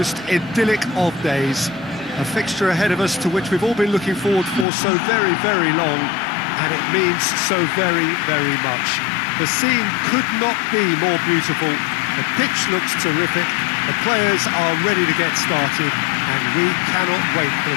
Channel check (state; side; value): drops out; right; at 4.7 s